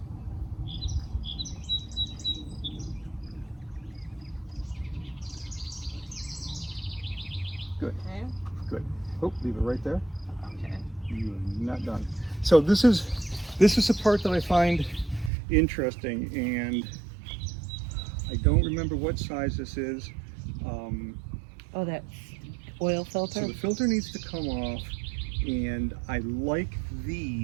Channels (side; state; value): left; drops out; at 15.3 s